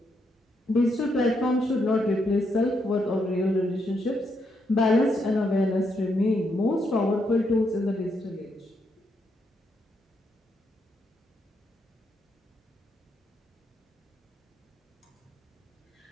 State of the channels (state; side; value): normal; both; correlation 0.79